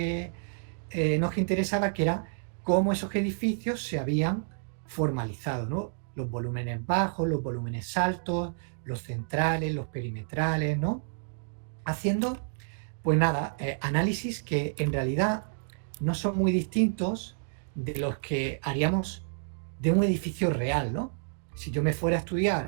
nos interesaba, que era cómo esos edificios se habían formalizado, ¿no? Los volúmenes bajos, los volúmenes altos, los centrales, los perimetrales, ¿no? Haciendo, pues nada, análisis que en realidad no son muy distintos de los que haríamos de un edificio real, ¿no? Si yo me fuera a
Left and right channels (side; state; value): left; silent; digital silence